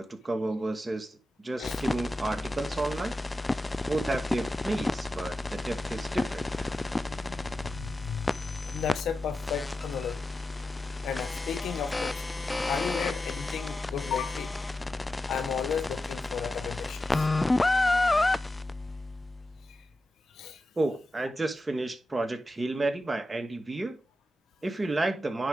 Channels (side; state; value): both; normal; correlation 0.91